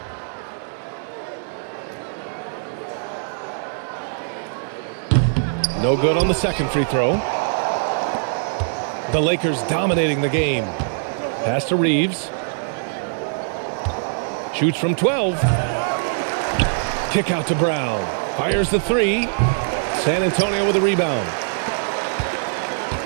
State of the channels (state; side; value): silent; left; digital silence